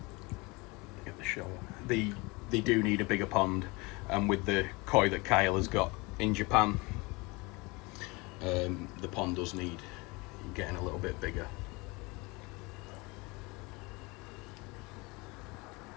shower. They do need a bigger pond, and with the koi that Kyle has got in Japan, the pond does need getting a little bit bigger.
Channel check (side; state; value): right; quieter; 25.7 dB